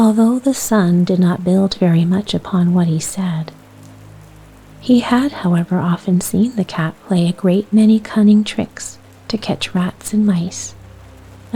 the son did not build very much upon what he said, he had, however, often seen the cat play a great many cunning tricks to catch rats and mice,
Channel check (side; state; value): both; identical; correlation 1.00